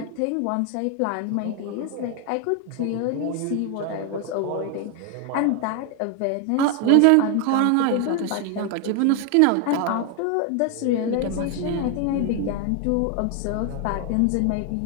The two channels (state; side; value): different; both; correlation 0.01